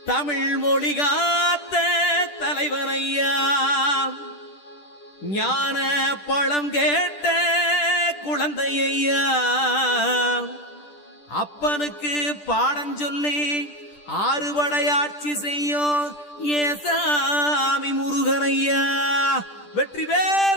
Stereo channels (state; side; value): late; right; 10 ms